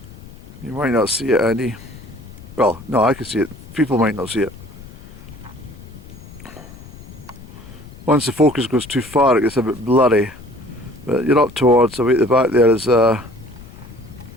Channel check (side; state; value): left; noise; rumble, 18 dB below the sound